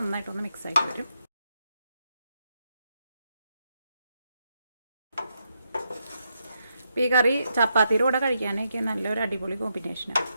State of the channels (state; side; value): inverted; both; correlation -0.82